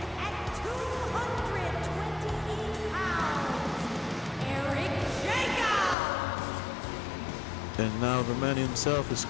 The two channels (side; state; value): right; drops out; at 6.0 s